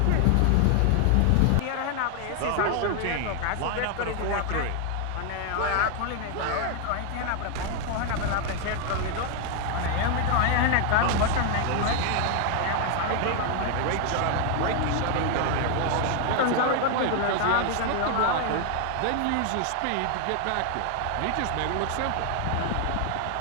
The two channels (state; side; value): different; both; correlation 0.00